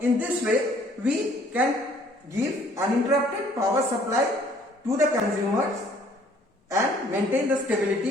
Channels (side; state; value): both; normal; correlation 0.59